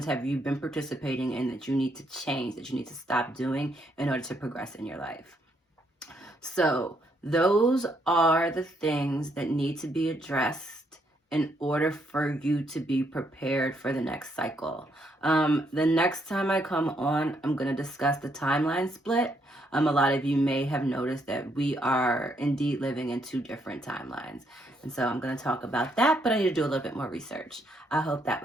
have you been participating in that you need to change, that you need to stop doing in order to progress in your life. So those are the things that need to be addressed in order for you to be prepared for the next cycle. The next time I come on, I'm going to discuss the timeline split. A lot of you may have noticed that we are indeed living in 2 different timelines. And so I'm going to talk about that, but I need to do a little bit more research. I hope that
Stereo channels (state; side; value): normal; both; correlation 0.74